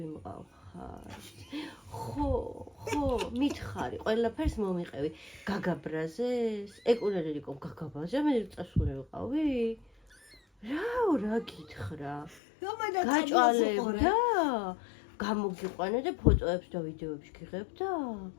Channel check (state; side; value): drops out; right; at 12.4 s